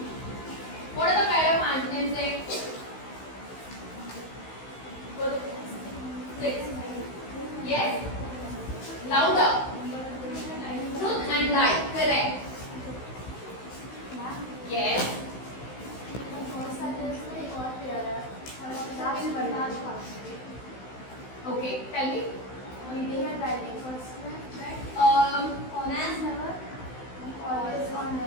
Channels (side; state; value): right; late; 16 ms